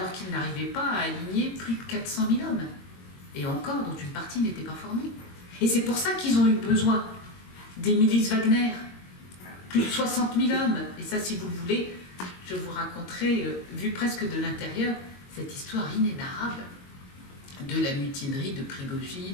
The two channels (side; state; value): right; late; 22 ms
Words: qu'ils n'arrivaient pas à aligner plus de 400 000 hommes. Et encore, dont une partie n'était pas formée. Et c'est pour ça qu'ils ont eu besoin des milices Wagner. Plus de 60 000 hommes. Et ça, si vous le voulez, je vous raconterai, vu presque de l'intérieur, cette histoire inénarrable de la mutinerie de